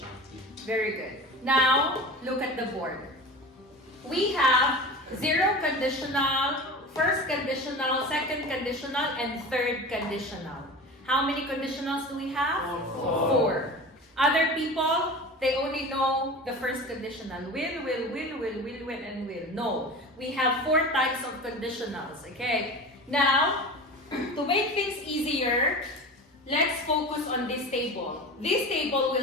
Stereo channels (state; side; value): normal; both; correlation 0.32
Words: Very good. Now, look at the board. We have zero conditional, first conditional, second conditional, and third conditional. How many conditionals do we have? Four. Other people, they only know the first conditional. Will, and will. No. We have four types of conditionals, okay? Now, to make things easier, let's focus on this table. This table